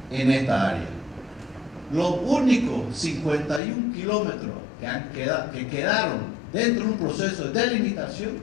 en esta área. Los únicos 51 kilómetros que quedaron dentro de un proceso de delimitación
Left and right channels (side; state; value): right; drops out; at 3.6 s